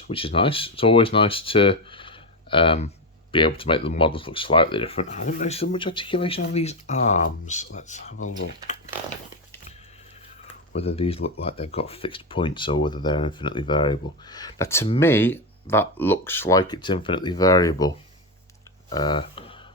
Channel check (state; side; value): normal; both; correlation 0.12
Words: which is nice. It's always nice to be able to make the models look slightly different. I don't notice so much articulation on these arms. Let's have a look. Whether these look like they've got fixed points or whether they're infinitely variable. Now, to me, that looks like it's infinitely variable.